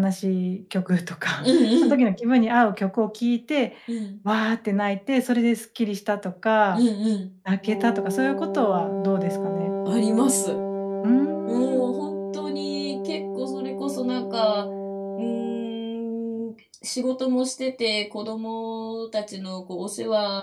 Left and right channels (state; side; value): identical; both; correlation 1.00